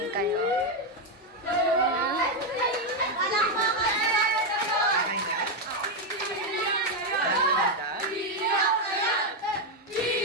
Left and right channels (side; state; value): both; normal; correlation 0.04